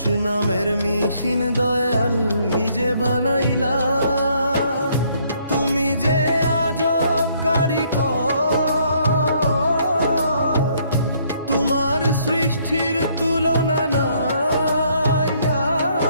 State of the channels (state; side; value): inverted; both; correlation -0.67